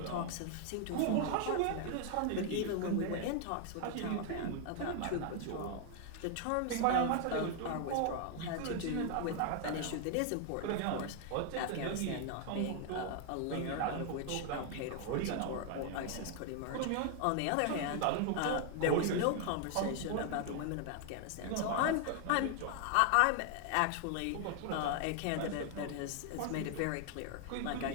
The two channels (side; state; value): both; different; correlation 0.00